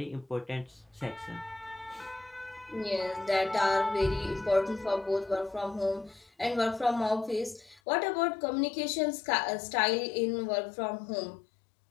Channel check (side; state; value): right; drops out; at 7.8 s